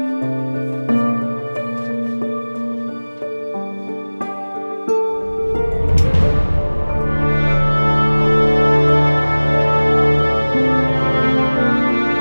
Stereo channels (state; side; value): inverted; both; correlation -1.00